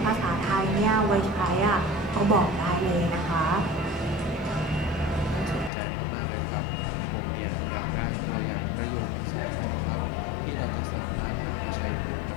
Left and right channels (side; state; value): right; drops out; at 5.7 s